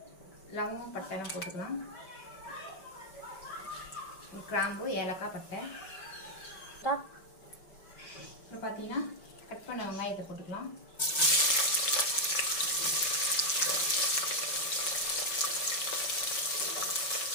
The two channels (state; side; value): late; right; 5.2 ms